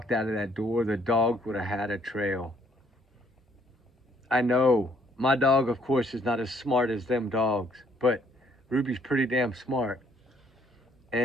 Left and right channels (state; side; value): normal; both; correlation 0.65